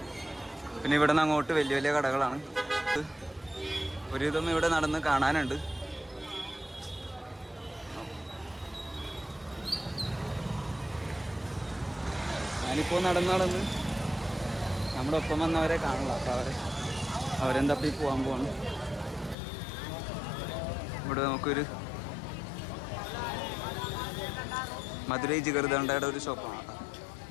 പിന്നെ ഇവിടെ നിന്ന് അങ്ങോട്ട് വലിയ വലിയ കടകളാണ്. ഒരുവിധം ഇവിടെ നടന്ന് കാണാനുണ്ട്. ഞാനിപ്പോൾ നടന്ന് നമ്മുടെ ഒപ്പം വന്നവരെ കാണില്ല. അപ്പോൾ അവരെന്തപ്പി പോകാൻ പോകുന്നു. ഇവിടെ നമുക്കൊരു മധുരൈ ജിഗർദണ്ഡയുടെ ഒരു ഷോപ്പാണ് കേട്ടോ.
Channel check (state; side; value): drops out; right; at 19.4 s